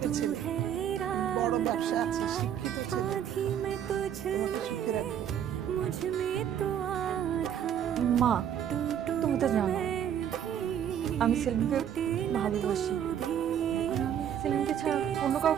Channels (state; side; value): quieter; left; 9.4 dB